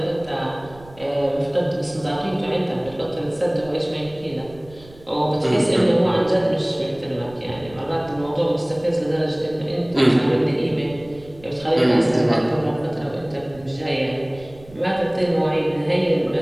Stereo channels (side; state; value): right; noise; rumble, 21 dB below the sound